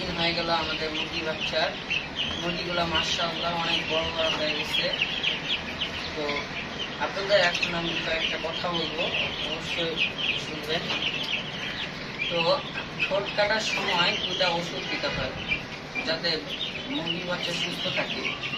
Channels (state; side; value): identical; both; correlation 1.00